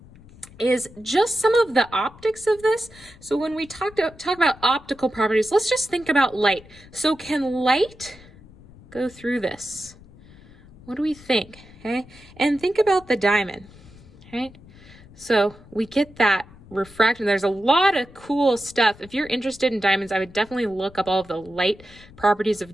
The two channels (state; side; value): noise; left; rumble, 22 dB below the sound